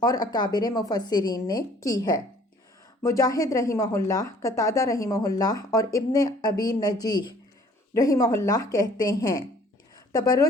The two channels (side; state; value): both; normal; correlation 0.55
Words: اکابر مفسرین نے کی ہے۔ مجاہد رحمہ اللہ، قتادہ رحمہ اللہ اور ابن ابی نجیح رحمہ اللہ کہتے ہیں